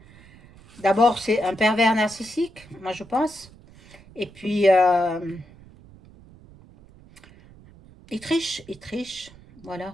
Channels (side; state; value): right; noise; rumble, 23 dB below the sound